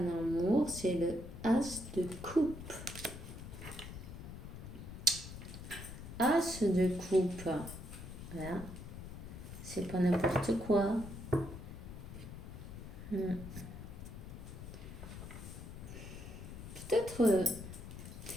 amour, c'est le As de coupe. As de coupe. Voilà. C'est pas n'importe quoi.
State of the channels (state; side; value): noise; left; rumble, 11 dB below the sound